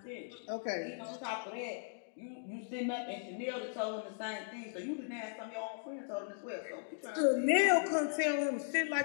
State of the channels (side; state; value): right; silent; digital silence